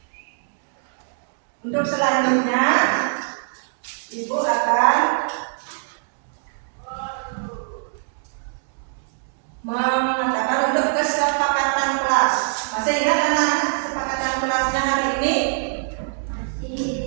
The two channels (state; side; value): silent; left; digital silence